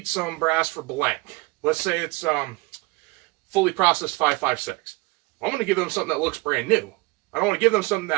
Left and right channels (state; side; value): quieter; left; 24.2 dB